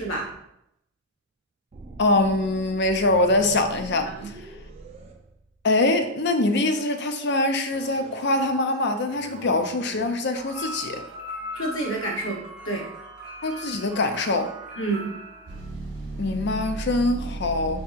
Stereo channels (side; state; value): both; normal; correlation -0.02